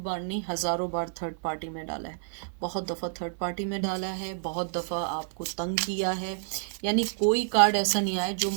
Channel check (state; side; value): silent; left; 58 dB below the other